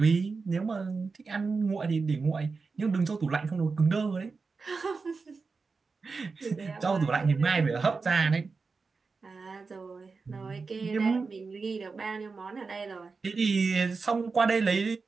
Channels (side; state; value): left; quieter; 4.5 dB